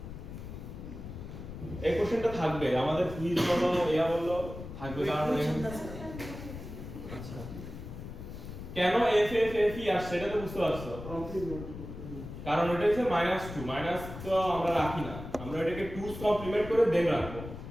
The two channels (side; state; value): left; noise; rumble, 10 dB below the sound